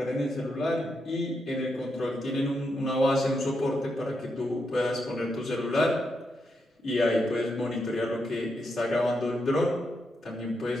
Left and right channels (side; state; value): both; normal; correlation 0.83